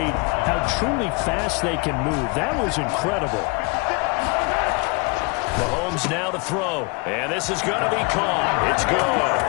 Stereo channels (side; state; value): right; quieter; 28.5 dB